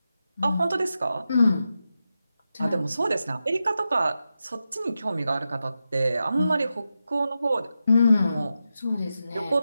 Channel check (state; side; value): inverted; both; correlation -0.89